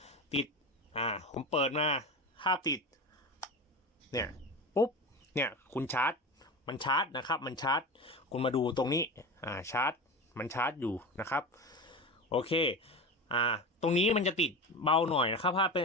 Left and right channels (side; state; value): both; normal; correlation 0.26